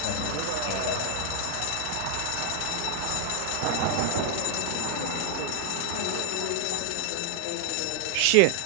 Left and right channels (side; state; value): both; different; correlation 0.00